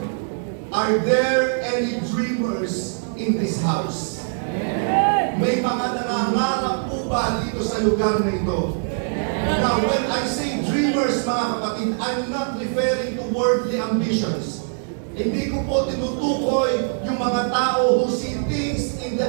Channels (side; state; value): left; silent; digital silence